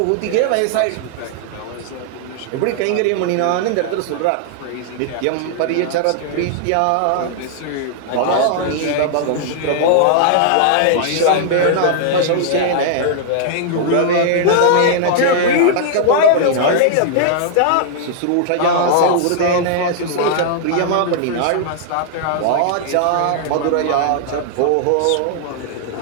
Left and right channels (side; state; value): both; different; correlation -0.01